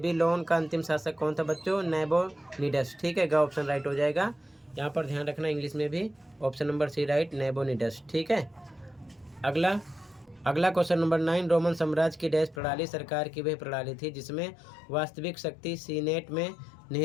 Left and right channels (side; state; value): right; drops out; at 12.6 s